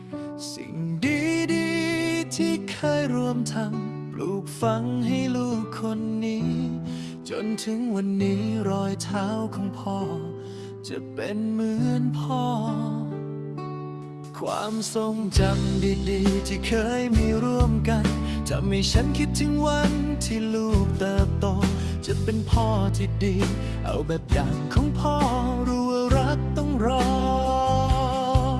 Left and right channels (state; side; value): identical; both; correlation 1.00